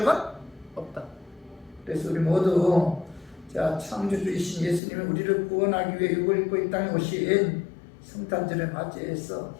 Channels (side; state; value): right; drops out; at 4.8 s